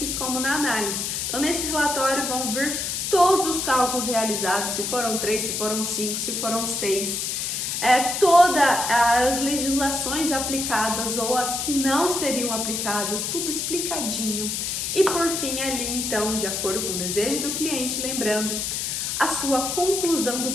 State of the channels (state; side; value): noise; left; hiss, 2 dB below the sound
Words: como na análise. Então nesse relatório vão vir todos os cálculos realizados, se foram 3, se foram 5, se foram 6, todas as legislações aplicadas ou as que não seriam aplicadas, tudo explicadinho. E por fim ali então, de acordo com o desejo do cliente, lembrando a sua conclusão do